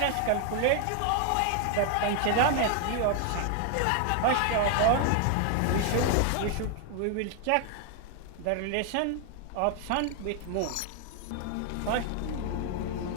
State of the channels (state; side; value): different; both; correlation 0.00